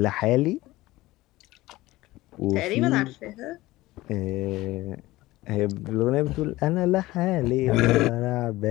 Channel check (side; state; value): right; quieter; 18.3 dB